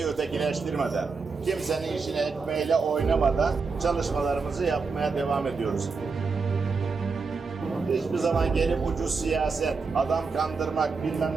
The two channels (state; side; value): quieter; left; 4.7 dB